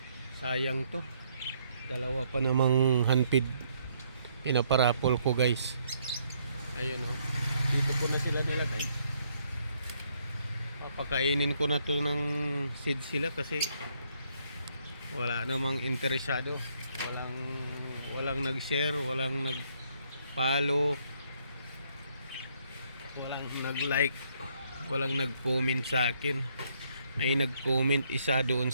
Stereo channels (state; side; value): inverted; both; correlation -0.70